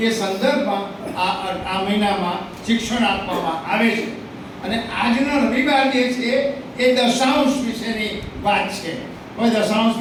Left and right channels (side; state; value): both; identical; correlation 1.00